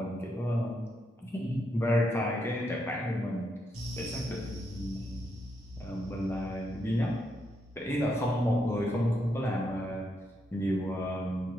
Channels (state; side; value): normal; both; correlation 0.79